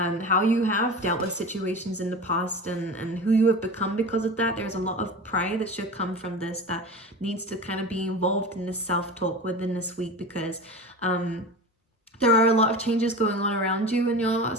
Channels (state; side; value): normal; both; correlation 0.31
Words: you have dealt with situations in the past, and who you have become because of that. There's a lot of pride that should come from this that needs to kind of be involved in this self-talk within this week, because there are a lot of changes going on around you in your